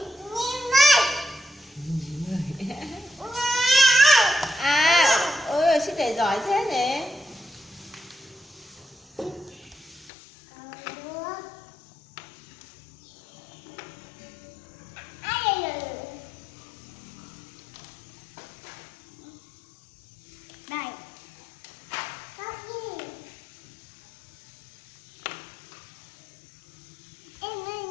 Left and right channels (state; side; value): drops out; right; at 10.1 s